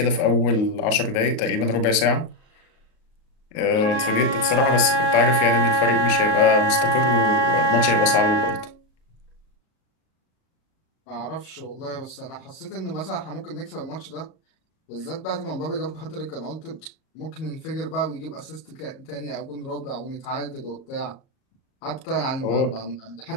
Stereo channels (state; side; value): late; right; 38 ms